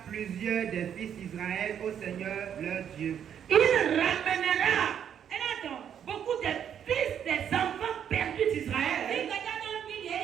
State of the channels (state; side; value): quieter; left; 8.9 dB